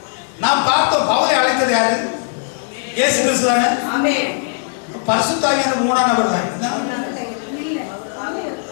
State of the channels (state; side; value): silent; right; 63 dB below the other